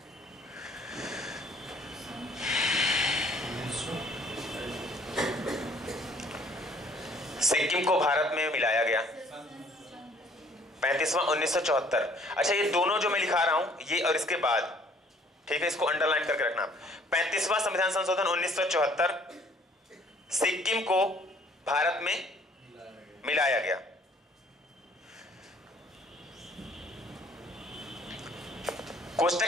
सिक्किम को भारत में मिलाया गया। 35वां 1974। अच्छा, ये दोनों जो मैं लिखा रहा हूं, ये और इसके बाद, ठीक है, इसको अंडरलाइन करके रखना। 35वां संविधान संशोधन 1974, सिक्किम को भारत में मिलाया गया। कोष्टक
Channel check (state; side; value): normal; both; correlation 0.59